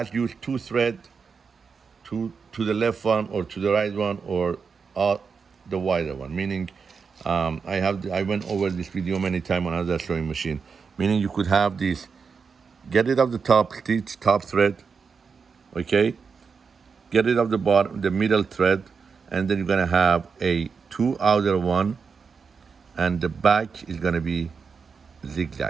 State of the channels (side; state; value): left; quieter; 5.6 dB